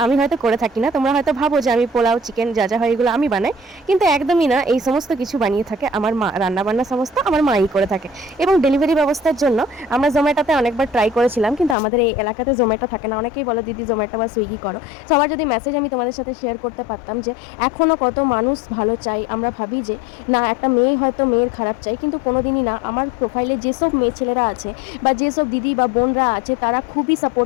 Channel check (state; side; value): drops out; right; at 11.8 s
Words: আমি হয়তো করে থাকি না। তোমরা হয়তো ভাবো যে আমি পোলাও, চিকেন যা যা হয় এগুলো আমি বানাই, কিন্তু একদমই না। এই সমস্ত কিছু বানিয়ে থাকে আমার মা, রান্না বান্না সমস্ত আমার মাই করে থাকে। এবং ডেলিভারি ব্যবস্থার জন্য আমরা জোম্যাটোতে অনেকবার ট্রাই করেছিলাম, কিন্তু আমাদের এই এলাকাতে জোম্যাটো থাকে না। অনেকেই বলো দিদি জোম্যাটো বা সুইগি করো। সবার যদি মেসেজ আমি তোমাদের সাথে শেয়ার করতে পারতাম যে এখনও কত মানুষ ভালো চাই। আমরা ভাবি যে না, একটা মেয়ে হয়তো মেয়ের খারাপ চাই, কিন্তু কোনোদিনই না। আমার প্রোফাইলে যেসব মেয়ে ছেলেরা আছে বা যেসব দিদি বা বোনরা আছে তারা খুবই